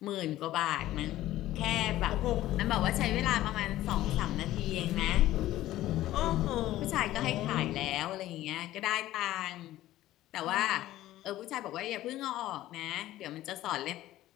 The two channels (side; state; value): right; quieter; 14.9 dB